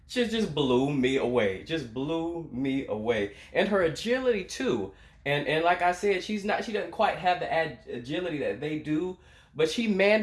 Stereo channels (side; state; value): both; identical; correlation 1.00